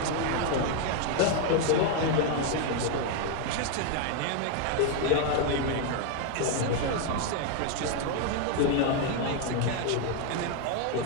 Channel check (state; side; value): different; both; correlation 0.01